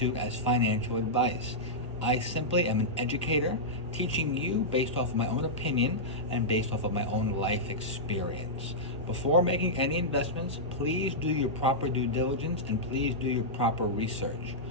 as financial advice. I simply am an educator, teaching you based off of my own opinion and based off of my own life experience. Before making any investments, please do your proper due diligence and please do your proper research.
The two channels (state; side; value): normal; both; correlation -0.10